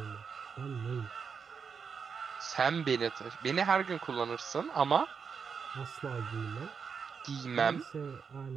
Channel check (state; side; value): quieter; left; 6.1 dB